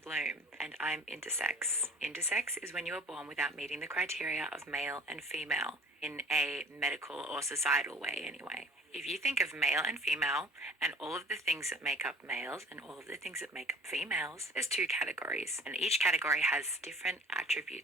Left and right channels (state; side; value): normal; both; correlation 0.48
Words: and I'm intersex. Intersex is when you are born without meeting the criteria of male and female, in a medical or societal way anyway. If you think of male and female and all of the things that make up males and all of the things that make up females, there's two categories, and each category has different